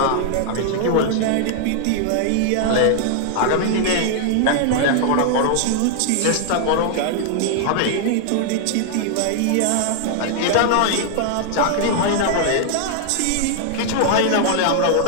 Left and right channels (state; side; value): different; both; correlation -0.01